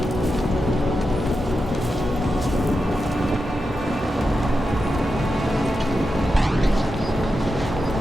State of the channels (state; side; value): normal; both; correlation 0.89